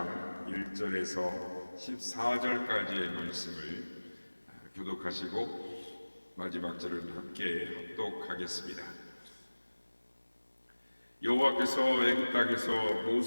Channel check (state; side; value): inverted; both; correlation -1.00